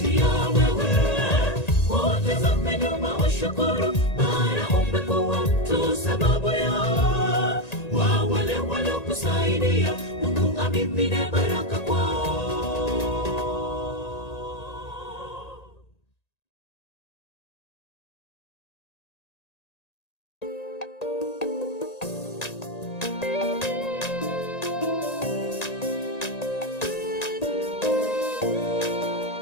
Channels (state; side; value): late; right; 1.9 ms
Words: wewe. Utazame nyuma ushukuru, maana umekuwa mtu sababu yao. Wa wale walokusaidia Mungu amimine baraka kwao.